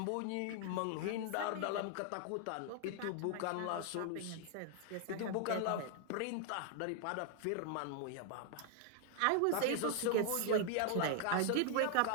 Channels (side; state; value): both; different; correlation 0.00